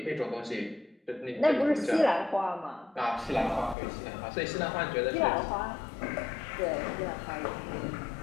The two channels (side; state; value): right; drops out; at 3.8 s